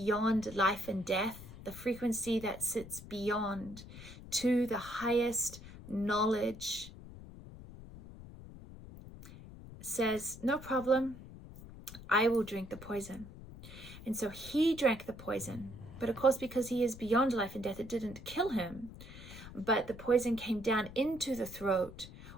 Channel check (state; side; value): noise; left; rumble, 15 dB below the sound